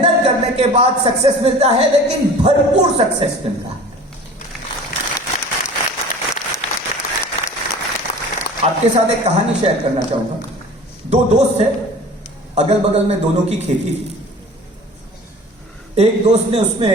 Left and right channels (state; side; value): normal; both; correlation 0.42